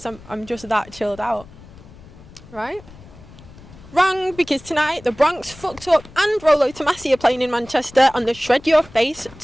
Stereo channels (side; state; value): left; noise; rumble, 20 dB below the sound